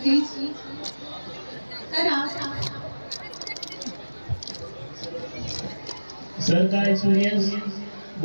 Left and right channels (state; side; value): inverted; both; correlation -1.00